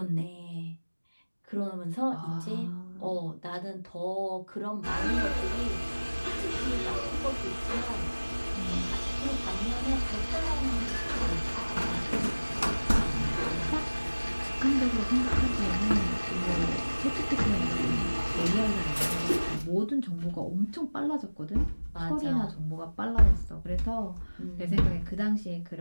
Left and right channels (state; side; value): inverted; both; correlation -1.00